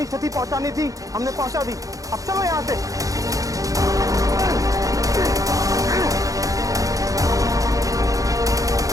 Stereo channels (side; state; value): left; late; 0.17 ms